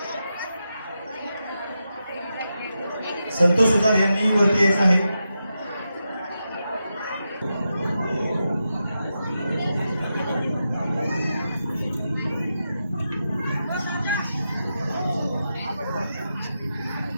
संतोष सुतार यांनी वरती यायचं आहे.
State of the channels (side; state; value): both; inverted; correlation -0.88